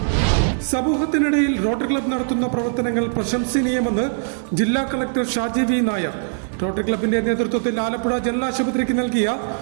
സമൂഹത്തിനിടയിൽ റോട്ടറി ക്ലബ്ബ് നടത്തുന്ന പ്രവർത്തനങ്ങൾ പ്രശംസനീയമെന്ന് ജില്ലാ collector Shaji V Nair. Rotary ക്ലബിന്റെ നേതൃത്വത്തിൽ ആലപ്പുഴ ജനറൽ ആശുപത്രിക്ക് നൽകിയ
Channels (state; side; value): silent; left; digital silence